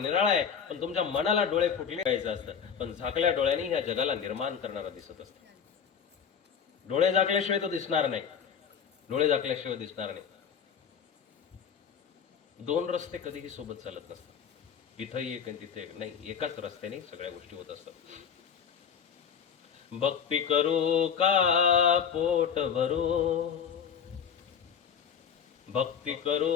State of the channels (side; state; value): right; quieter; 7.4 dB